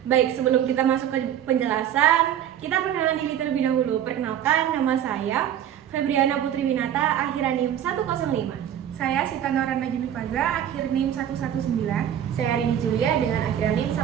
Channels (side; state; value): left; quieter; 10.3 dB